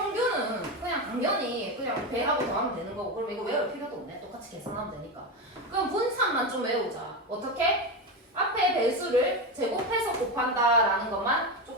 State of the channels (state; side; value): normal; both; correlation 0.16